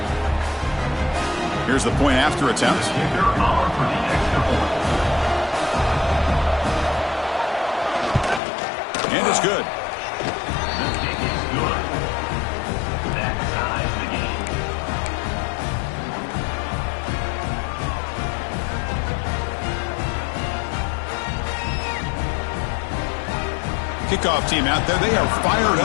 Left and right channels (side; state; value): right; drops out; at 8.4 s